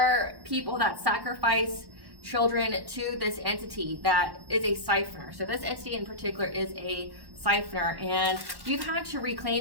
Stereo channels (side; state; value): left; late; 1.1 ms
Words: people that sacrifice children to this entity that is a siphoner. So this entity in particular is a siphoner, and you've had to